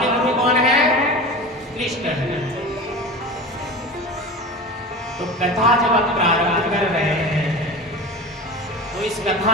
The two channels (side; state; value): both; normal; correlation 0.31